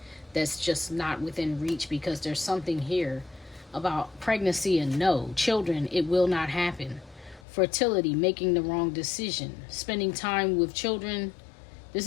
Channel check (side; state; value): right; drops out; at 7.4 s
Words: that's just not within reach, because there's something here about pregnancy and no. Children, it will not happen. Fertility, making the wrong decision, spending time with children. This